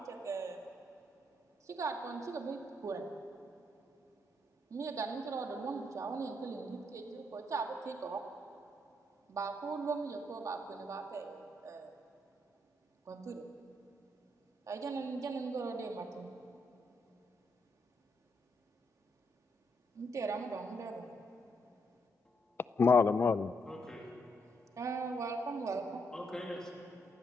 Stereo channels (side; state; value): both; normal; correlation 0.76